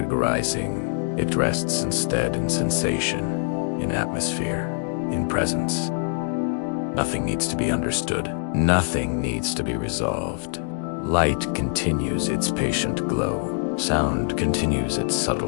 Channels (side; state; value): right; silent; digital silence